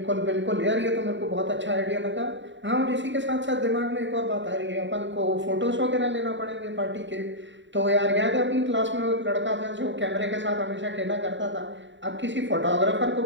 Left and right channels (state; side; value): late; left; 0.54 ms